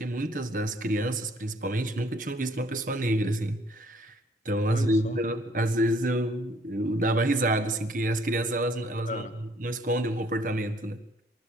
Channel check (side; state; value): both; normal; correlation 0.62